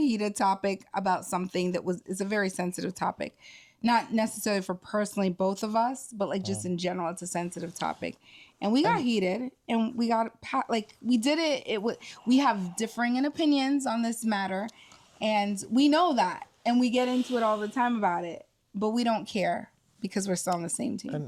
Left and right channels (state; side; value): identical; both; correlation 1.00